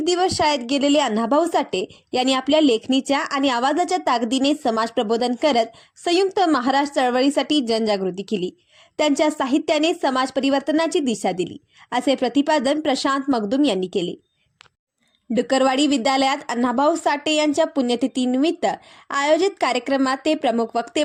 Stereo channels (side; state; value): both; identical; correlation 1.00